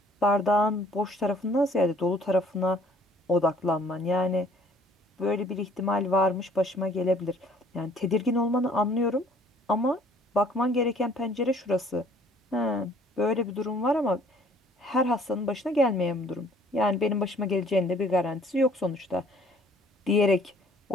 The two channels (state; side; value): normal; both; correlation 0.57